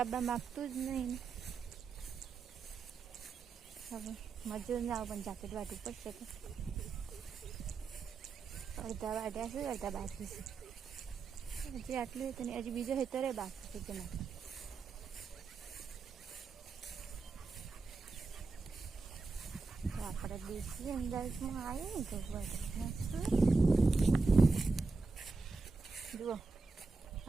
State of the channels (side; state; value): left; quieter; 4.1 dB